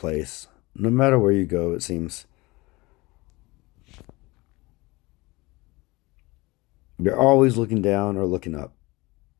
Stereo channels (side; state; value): right; quieter; 22.9 dB